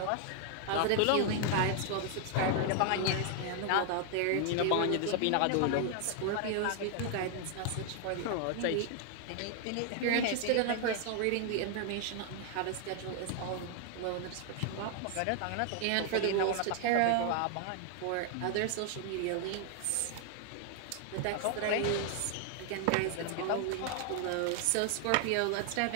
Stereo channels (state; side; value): different; both; correlation 0.00